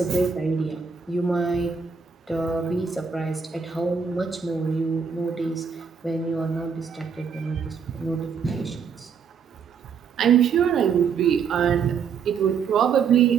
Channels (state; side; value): quieter; left; 6.2 dB